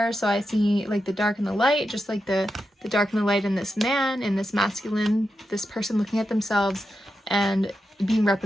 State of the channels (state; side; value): normal; both; correlation 0.88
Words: So I see like the dark and the light, just like the dark and the light in this man, in this masculine, this person looking at themselves and being